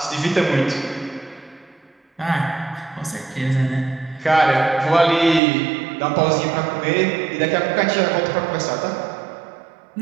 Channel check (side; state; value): left; drops out; at 5.4 s